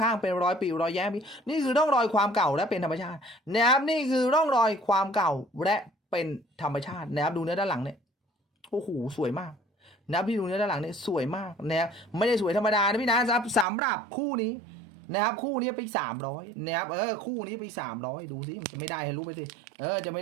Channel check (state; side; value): drops out; left; at 13.7 s